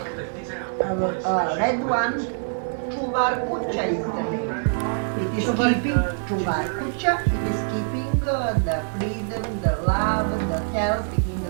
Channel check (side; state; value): left; silent; digital silence